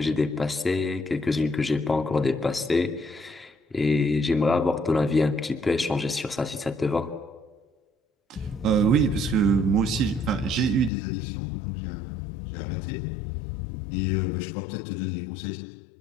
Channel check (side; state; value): right; drops out; at 10.9 s